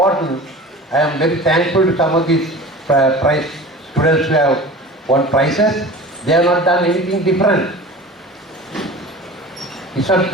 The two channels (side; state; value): both; normal; correlation 0.37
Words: I am very thankful to some of these students who have won prizes. They have not done anything different. It's not,